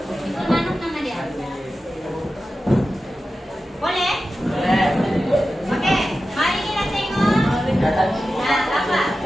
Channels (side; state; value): both; normal; correlation 0.93